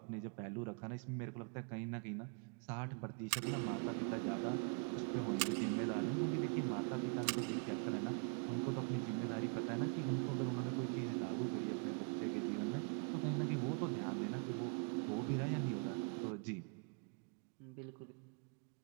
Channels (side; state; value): left; quieter; 38.3 dB